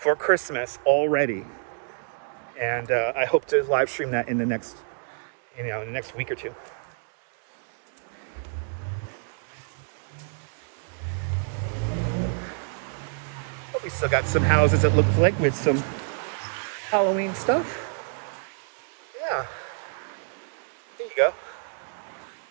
Christmas already, and I hope to live stream that in the next, in the next week or two. But we still got some houses that look like with some Halloween stuff. Yeah, there you go.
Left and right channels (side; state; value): left; silent; 60 dB below the other